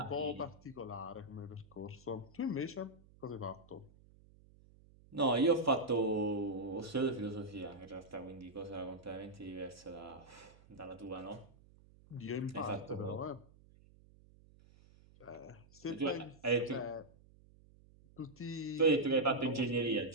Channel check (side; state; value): right; noise; hum, 25 dB below the sound